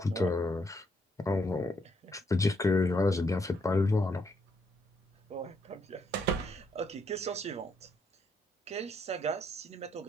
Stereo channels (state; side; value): normal; both; correlation 0.74